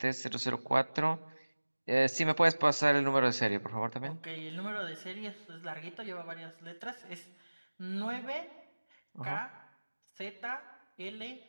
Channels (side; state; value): both; inverted; correlation -1.00